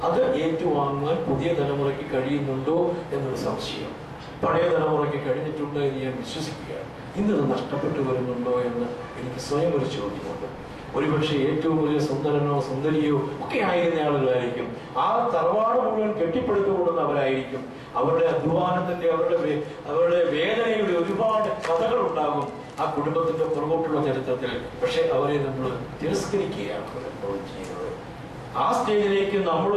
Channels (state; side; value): identical; both; correlation 1.00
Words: അത് ഏറ്റുവാങ്ങാൻ പുതിയ തലമുറയ്ക്ക് കഴിയുന്നുണ്ടോ എന്നൊരു സംശയം. പഴയ തലമുറയ്ക്ക് കഴിഞ്ഞിട്ടുണ്ട് എന്ന് ഞാൻ വിശ്വസിക്കുകയാണ്. ഇന്നത് നഷ്ടപ്പെട്ടു വരുന്നുണ്ടോ എന്ന് എനിക്ക് സ്വയം ഒരു ചോദ്യമുണ്ട്. ഒരുപക്ഷെ ഏറ്റവും വലിയ സുന്ദരനോ സുന്ദരിയോ ഒക്കെ ആയിരുന്ന ആളുകളായിരിക്കും. ആ തറവാട് മുഴുവൻ കെട്ടിപ്പടുത്തുകൊള്ളുന്നവരായിരിക്കും. അവരുടെ അധ്വാനത്തിന്റെ അവരുടെ വേദനയുടെ ഒരുപാട് കഥകൾ ഉണ്ടാകും ആ കുടുംബത്തിന്റെ പുറകോട്ടുള്ള ചരിത്രത്തിൽ. പക്ഷെ അവരെ നമ്മൾ തിരസ്കരിക്കുകയാണ് ചെയ്യുന്നത്. ആ സ്റ്റേജിലേക്ക്